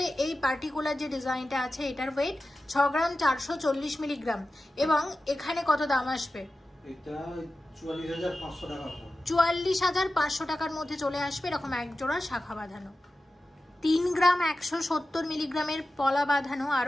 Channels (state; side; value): normal; both; correlation 0.94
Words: এই পার্টিকুলার যে ডিজাইনটা আছে এটার ওয়েট 6 গ্রাম 440 মিলিগ্রাম, এবং এখানে কত দাম আসবে? এটা 44,500 টাকা। 44,500 টাকার মধ্যে চলে আসবে এরকম এক জোড়া শাখা বাঁধানো। 3 গ্রাম 170 মিলিগ্রামের পলা বাঁধানো